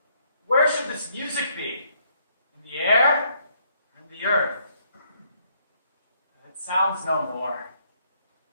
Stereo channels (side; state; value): both; inverted; correlation -0.70